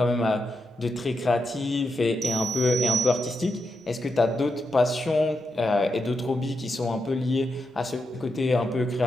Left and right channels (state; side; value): normal; both; correlation 0.85